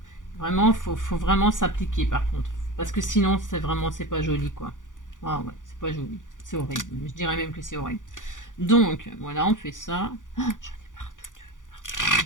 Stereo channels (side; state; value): right; late; 0.87 ms